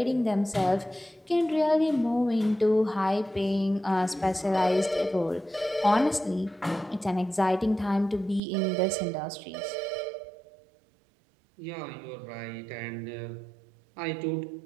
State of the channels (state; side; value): drops out; left; at 8.4 s